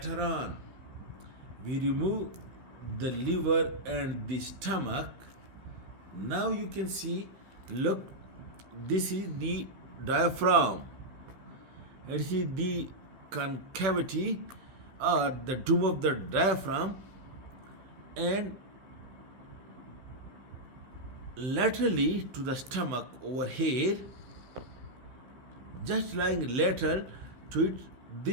on. We remove the liver and the stomach. Now you can see, look, this is the diaphragm. This is the concavity or the dome of the diaphragm, and laterally to the stomach over here, just lying lateral to it,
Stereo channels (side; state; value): left; late; 16 ms